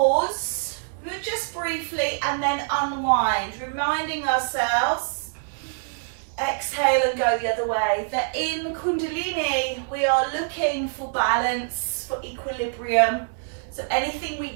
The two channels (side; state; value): left; silent; digital silence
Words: just briefly, and then unwind, reminding ourselves, exhale and go the other way, that in Kundalini we are looking for balance, for equilibrium. So anything